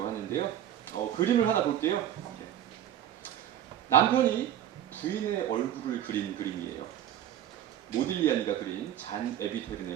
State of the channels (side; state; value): left; quieter; 11.1 dB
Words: 하는데요. 그림을 하나 볼게요. 네. 남편이 부인의 얼굴을 그린 그림이에요. 모딜리아니가 그린 잔